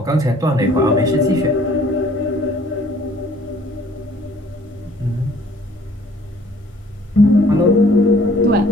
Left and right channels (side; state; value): both; normal; correlation 0.56